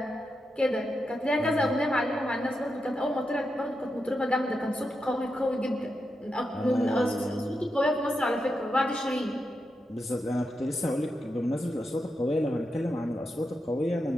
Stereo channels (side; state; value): both; normal; correlation 0.87